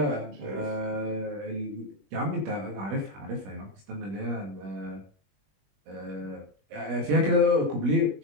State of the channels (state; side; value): late; left; 21 ms